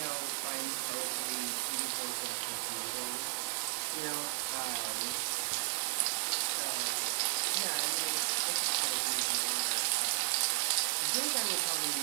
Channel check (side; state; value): left; silent; 55 dB below the other